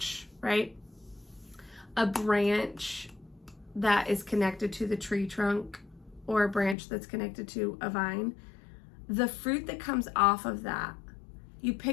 right? A branch that is connected to the tree trunk, or a branch that's connected to a vine. The fruit that comes off of that, you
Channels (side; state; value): right; drops out; at 6.8 s